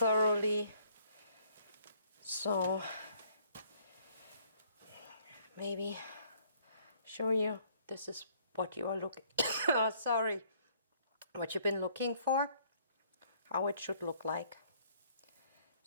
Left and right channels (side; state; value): both; inverted; correlation -0.63